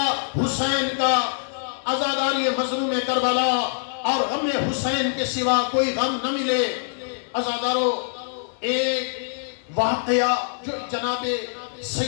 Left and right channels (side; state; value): right; silent; digital silence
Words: حسین کا عزاداری مظلوم کربلا اور غم حسین کے سوا کوئی غم نہ ملے۔ عزادارو، ایک واقعہ جو جناب